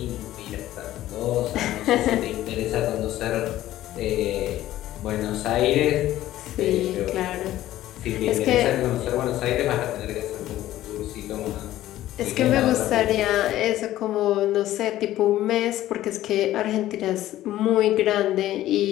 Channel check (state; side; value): quieter; right; 14.2 dB